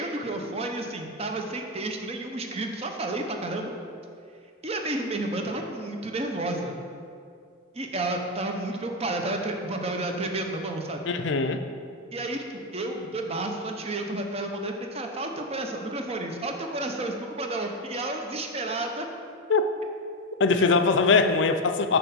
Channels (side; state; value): both; normal; correlation 0.08